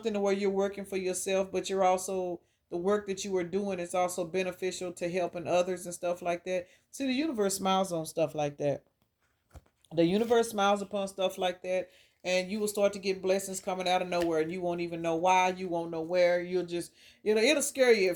to where you're working for yourself, but you're also, the work that you are doing is also beneficial to helping others and stuff like that. See, the universe smiles on stuff like that. The universe smiles upon stuff like that, and you will start to get blessings coming out of nowhere, and you won't even know why, you won't know where. You'll just, it'll scare you at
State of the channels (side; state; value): both; identical; correlation 1.00